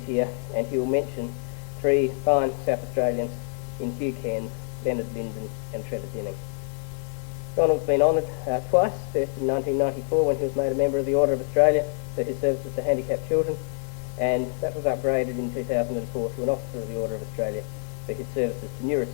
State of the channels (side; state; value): right; silent; 58 dB below the other